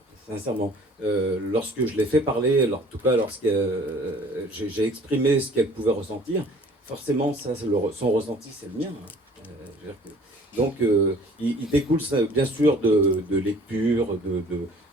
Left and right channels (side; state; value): both; normal; correlation 0.51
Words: sincèrement. Lorsque je l'ai fait parler, en tout cas lorsque j'ai exprimé ce qu'elle pouvait ressentir, forcément, ça, son ressenti, c'est le mien. Hein. Donc, il découle ça, bien sûr de lectures,